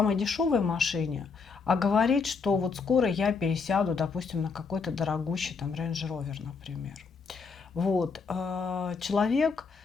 дешевой машине, а говорить, что вот скоро я пересяду, допустим, на какой-то дорогущий там Range Rover, например. Вот. Человек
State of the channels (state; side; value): quieter; right; 5.1 dB